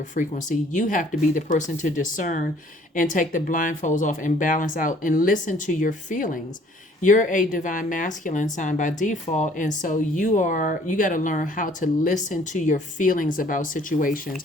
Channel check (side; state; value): both; normal; correlation 0.57